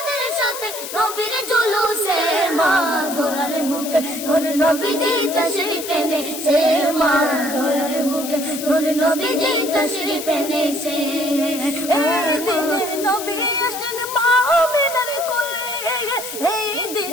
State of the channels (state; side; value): noise; left; hiss, 9 dB below the sound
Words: সাথে নবীর জুলুসে, মা ধরার বুকে ধরে নবীজি তাশরীফ এনেছে, মা ধরার বুকে ধরে নবীজি তাশরীফ এনেছে, এই দিনে নবী আসলেন মা আমিনার কোলে, এই